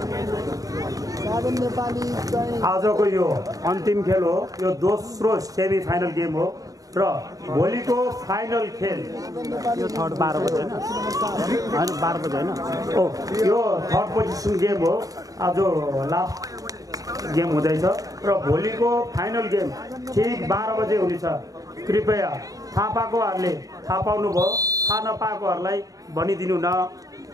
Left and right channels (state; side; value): late; left; 0.17 ms